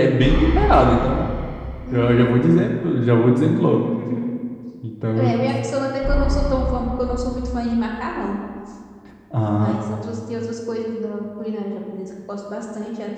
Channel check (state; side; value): identical; both; correlation 1.00